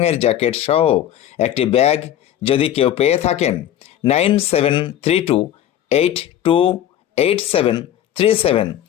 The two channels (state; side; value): quieter; right; 11.3 dB